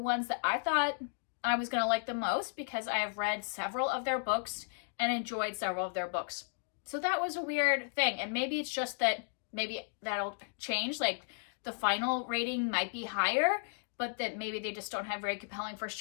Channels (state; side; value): silent; right; digital silence